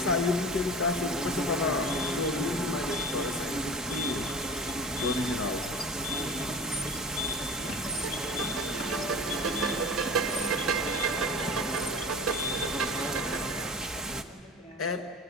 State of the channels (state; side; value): normal; both; correlation 0.36